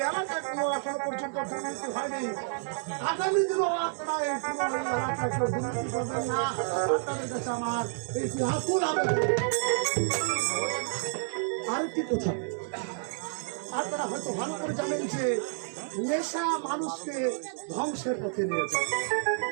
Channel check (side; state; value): left; silent; 58 dB below the other